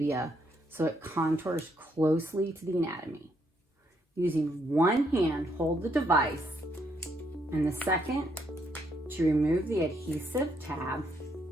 so it contours closely to the anatomy. Using one hand, hold the device, and the second to remove the adhesive tab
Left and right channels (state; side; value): normal; both; correlation 0.74